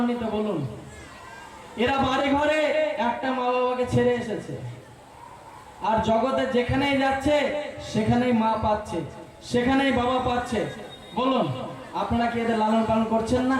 বলুন। এরা বাড়ি ঘরে একটা মা বাবাকে ছেড়ে এসেছে, আর জগতে যেখানেই যাচ্ছে সেখানেই মা পাচ্ছে, সেখানেই বাবা পাচ্ছে। বলুন আপনারা কি এদের লালন পালন করছেন না?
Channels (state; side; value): identical; both; correlation 1.00